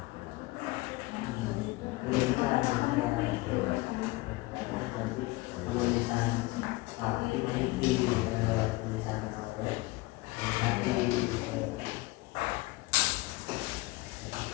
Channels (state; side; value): quieter; right; 21.0 dB